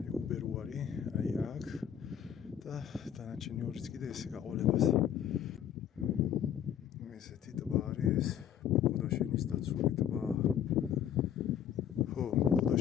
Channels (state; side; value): quieter; right; 9.5 dB